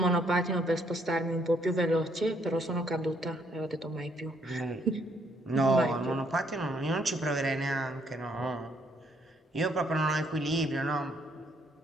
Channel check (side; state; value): both; normal; correlation 0.69